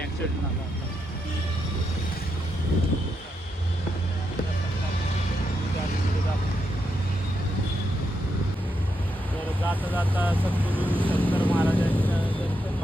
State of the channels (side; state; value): both; normal; correlation 0.83